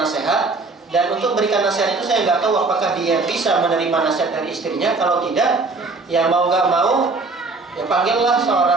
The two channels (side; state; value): left; quieter; 3.7 dB